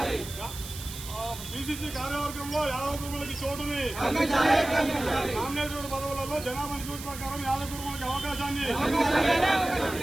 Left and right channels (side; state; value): right; noise; hiss, 11 dB below the sound